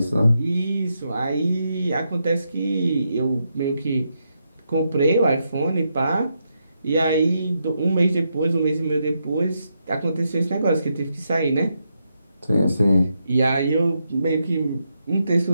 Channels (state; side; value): inverted; both; correlation -0.82